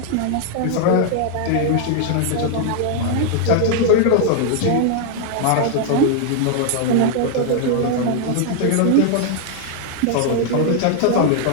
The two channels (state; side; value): different; both; correlation 0.00